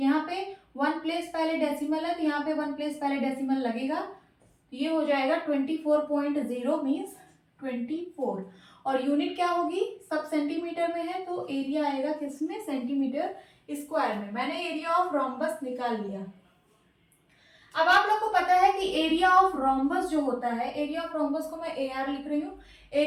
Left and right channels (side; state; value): both; identical; correlation 1.00